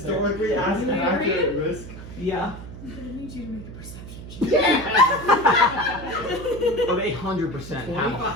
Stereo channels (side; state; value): right; noise; hum, 13 dB below the sound